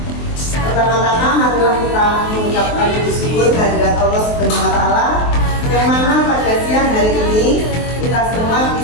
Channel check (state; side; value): late; right; 23 ms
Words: Pertama-tama marilah kita mengucapkan bersyukur kehadirat Allah Subhanahu wa Ta'ala, yang mana pada siang hari ini kita semua